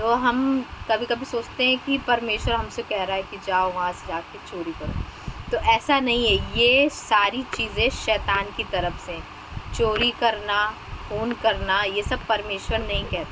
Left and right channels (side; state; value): both; identical; correlation 1.00